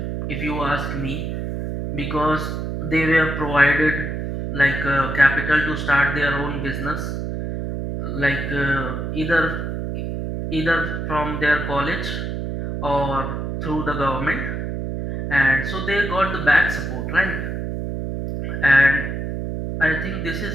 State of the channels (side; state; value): right; noise; hum, 4 dB below the sound